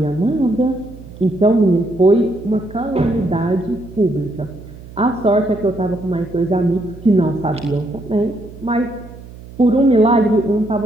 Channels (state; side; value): noise; right; hum, 17 dB below the sound